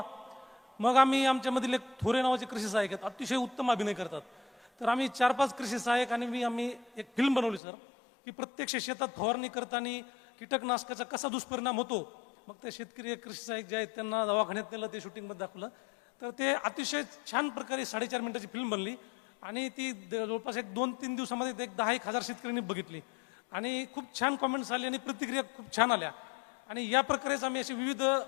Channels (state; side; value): drops out; right; at 7.6 s